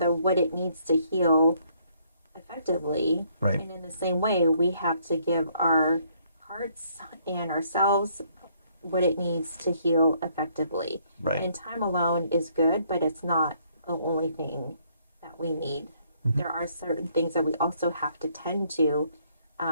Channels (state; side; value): inverted; both; correlation -0.68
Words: what it needs to heal effectively. Right. And in the same way, we have to give our hearts and ourselves what it needs to heal effectively. Right. And time alone is good, but it's not the only thing that we need. Mm-hmm. There are certain things that we also have to tend to